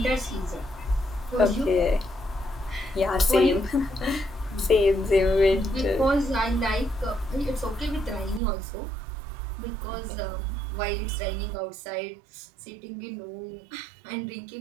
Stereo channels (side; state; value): left; drops out; at 8.4 s